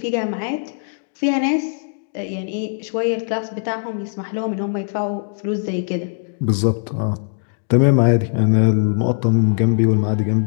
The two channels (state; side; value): silent; right; digital silence